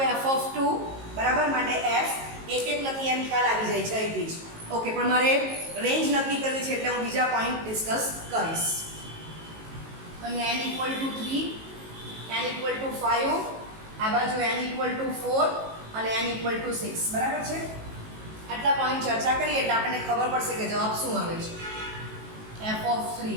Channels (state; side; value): late; left; 18 ms